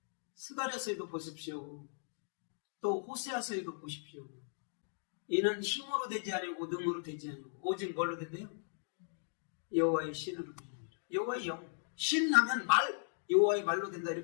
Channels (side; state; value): right; silent; digital silence